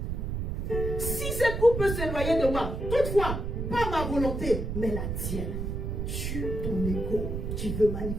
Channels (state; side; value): noise; right; rumble, 3 dB below the sound